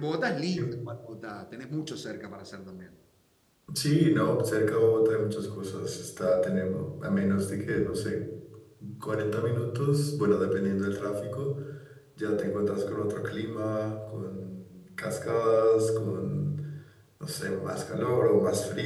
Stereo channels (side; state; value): both; identical; correlation 1.00